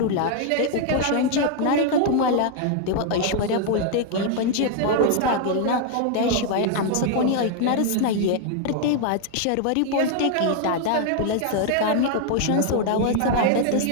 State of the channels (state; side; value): different; both; correlation 0.00